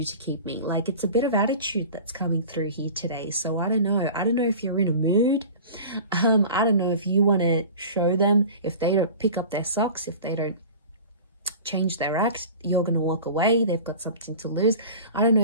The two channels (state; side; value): inverted; both; correlation -0.38